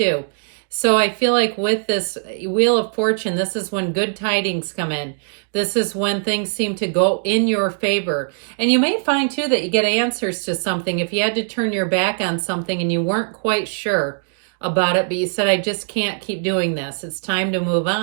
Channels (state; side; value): silent; left; 65 dB below the other